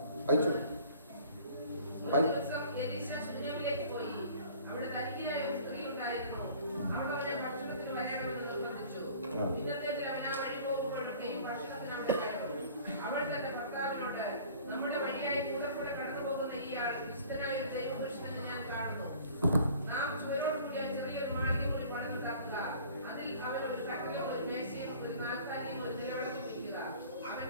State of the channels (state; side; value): inverted; both; correlation -0.49